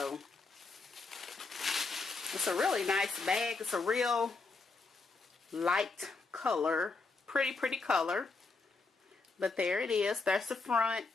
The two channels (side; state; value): right; quieter; 4.0 dB